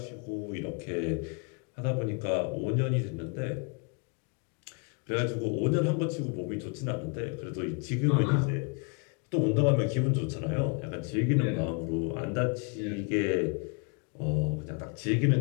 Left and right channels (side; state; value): right; quieter; 36.8 dB